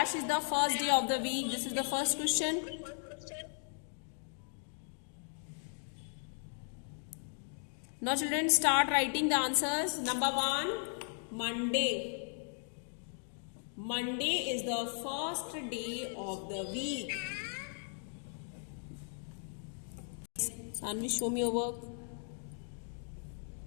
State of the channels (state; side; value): silent; right; 53 dB below the other